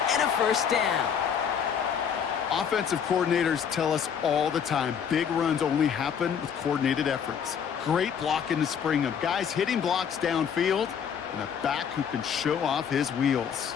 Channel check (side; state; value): right; quieter; 7.6 dB